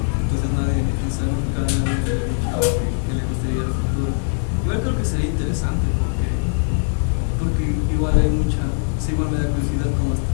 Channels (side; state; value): right; silent; digital silence